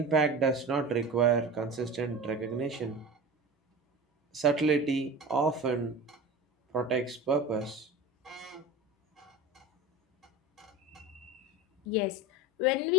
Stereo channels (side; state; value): both; normal; correlation 0.31